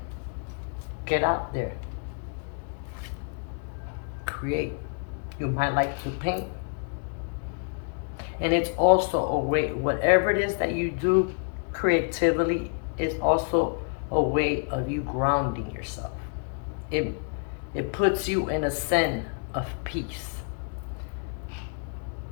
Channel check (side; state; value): right; quieter; 39.0 dB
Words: Get out there. Create. You might like to paint. And it's also a way, whatever it is that you do creatively, is also a way of you grounding yourself. It puts you in a zen of peace.